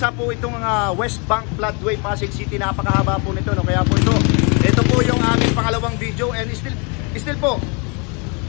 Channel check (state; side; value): quieter; right; 33.1 dB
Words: po itong West Bank Floodway, Pasig City. Napakahaba po nito, no? Kaya po ito po yung aming pangalawang video. And still po,